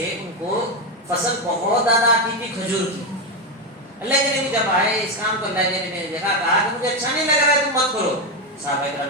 ان کو فصل بہت زیادہ آتی تھی کھجور کی۔ اللہ کے نبی جب آئے اس کام کو، اللہ کے نبی نے دیکھا، کہا کہ مجھے اچھا نہیں لگ رہا ہے، تم مت کرو۔ صحابہ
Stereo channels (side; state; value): both; normal; correlation 0.09